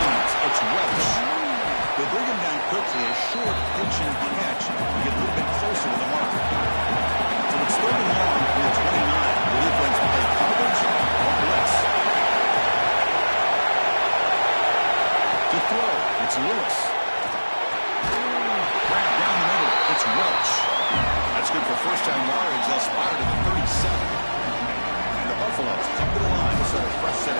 It's Welch. They bring him down quickly. A short pitch and catch to get a little bit closer to the mark. So it's 3rd and long from the 29. The defense play coverage or blitz. To throw, it's Lewis. Grab down the middle. It's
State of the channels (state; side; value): inverted; both; correlation -1.00